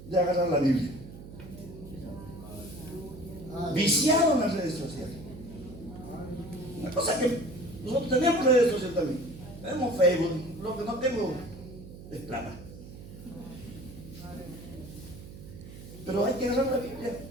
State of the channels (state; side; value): noise; right; hum, 15 dB below the sound